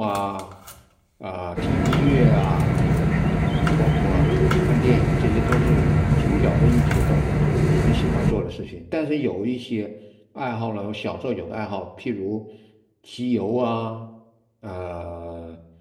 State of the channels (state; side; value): identical; both; correlation 1.00